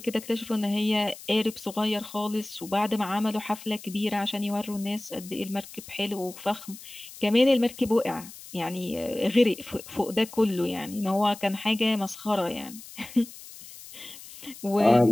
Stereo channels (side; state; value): left; noise; hiss, 16 dB below the sound